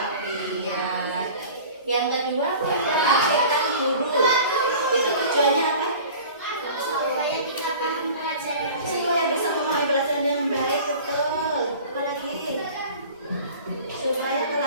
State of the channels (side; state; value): both; inverted; correlation -0.42